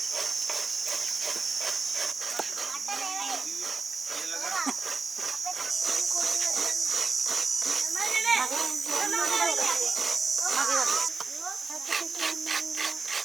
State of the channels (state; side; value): quieter; left; 4.4 dB